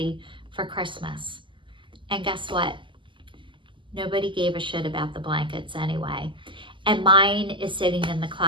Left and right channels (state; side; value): late; left; 0.24 ms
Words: for Christmas. And guess what? Nobody gave a shit about the blankets anyway. And mine is sitting in the